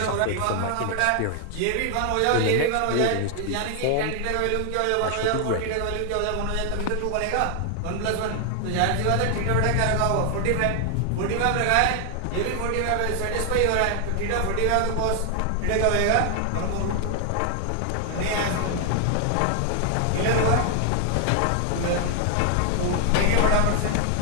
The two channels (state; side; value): different; both; correlation 0.00